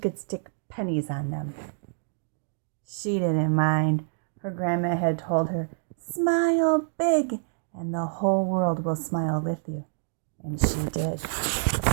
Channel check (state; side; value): silent; left; digital silence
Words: stick pennies on them. She didn't mind. Her grandma had told her, "Smile big, and the whole world will smile with you." And she did.